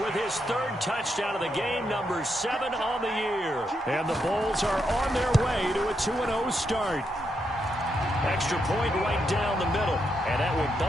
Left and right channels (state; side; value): normal; both; correlation 0.81